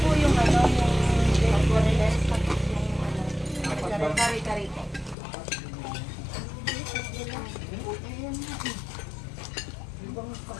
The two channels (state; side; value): drops out; right; at 5.2 s